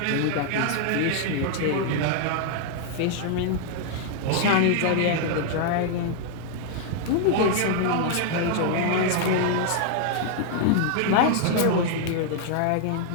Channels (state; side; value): different; both; correlation 0.00